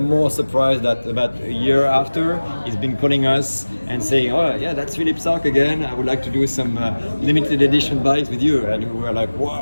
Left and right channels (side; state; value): both; inverted; correlation -1.00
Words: surprised that about a year after, he's been calling us and saying, "Oh yeah, that's Philippe Starck again. I would like to do some limited edition bikes with you." And we were like,